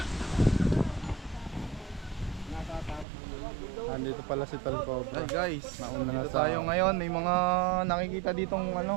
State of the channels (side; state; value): left; drops out; at 3.1 s